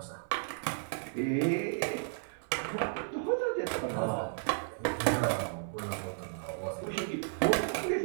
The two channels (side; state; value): left; silent; 55 dB below the other